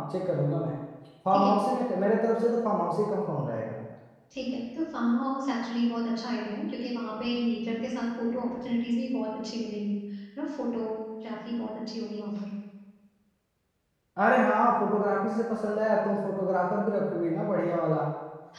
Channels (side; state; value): both; identical; correlation 1.00